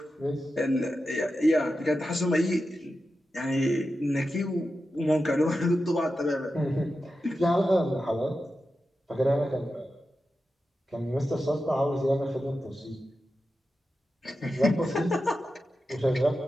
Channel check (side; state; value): both; normal; correlation 0.91